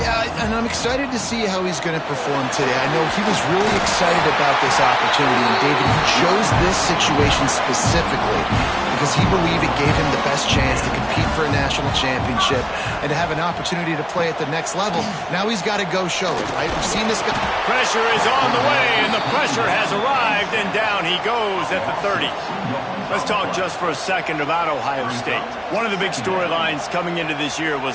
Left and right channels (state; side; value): identical; both; correlation 1.00